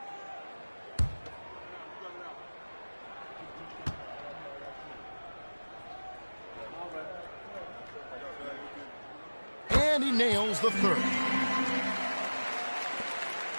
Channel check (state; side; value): inverted; both; correlation -1.00